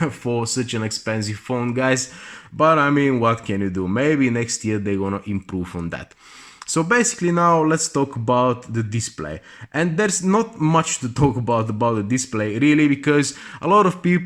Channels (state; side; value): identical; both; correlation 1.00